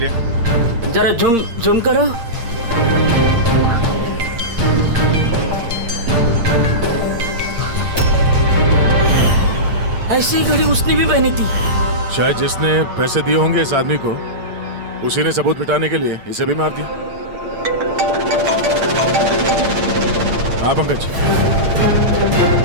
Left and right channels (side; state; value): left; late; 8.7 ms